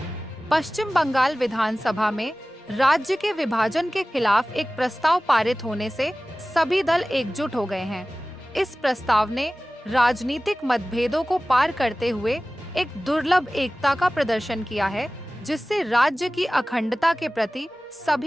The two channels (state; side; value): normal; both; correlation 0.97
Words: पश्चिम बंगाल विधानसभा में राज्य के विभाजन के खिलाफ एक प्रस्ताव पारित होने से सभी दल एकजुट हो गए हैं। इस प्रस्ताव ने राजनीतिक मतभेदों को पार करते हुए एक दुर्लभ एकता का प्रदर्शन किया है, जिससे राज्य की अखंडता के प्रति